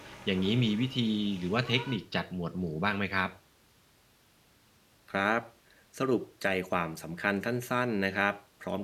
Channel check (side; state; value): both; identical; correlation 1.00